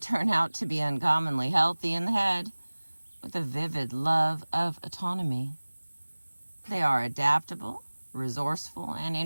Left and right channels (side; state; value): both; inverted; correlation -1.00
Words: out to be uncommonly healthy in the head, with a vivid love of autonomy. They are adaptable, resourceful, and